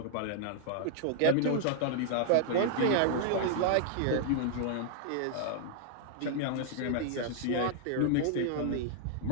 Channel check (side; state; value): both; different; correlation -0.01